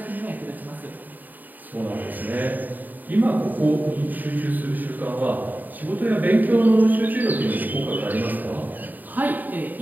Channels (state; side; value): late; left; 0.086 ms